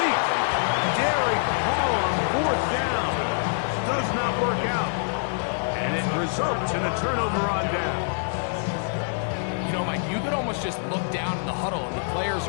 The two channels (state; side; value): silent; right; 61 dB below the other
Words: Derek Hall on fourth down. Does not work out. And it results in a turnover on down. You know, Mike, you could almost just look down in the huddle and the players